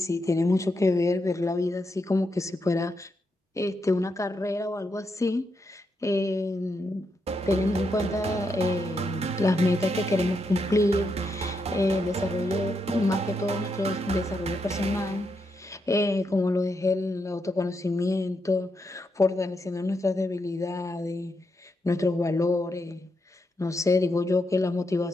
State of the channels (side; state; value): both; normal; correlation 0.82